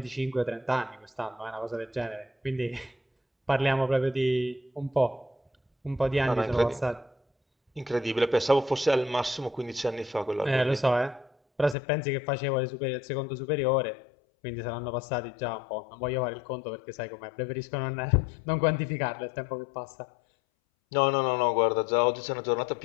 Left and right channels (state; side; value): drops out; right; at 11.8 s